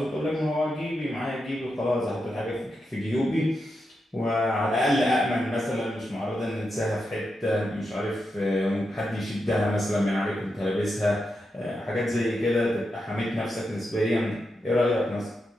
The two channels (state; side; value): normal; both; correlation 0.86